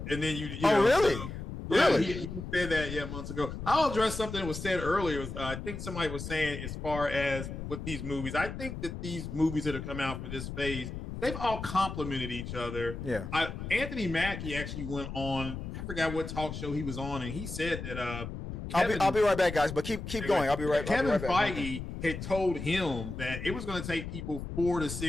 And then you oh know, really? Yeah, Really? he said that months ago. I'll address something that was said earlier. I think somebody was saying as far as with these movies, I think that these movies that have come out for this phase, they've all complemented each other. Yeah. Anthony Mackie actually went on, I forgot what talk show he was on, and he said that I'll be right back, guys. But keep going. I'll be right Kevin back. Feige had told him that it was going to take people 4 to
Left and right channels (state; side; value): noise; left; rumble, 7 dB below the sound